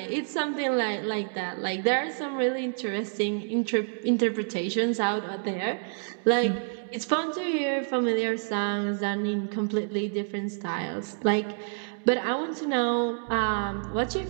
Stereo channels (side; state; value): left; silent; digital silence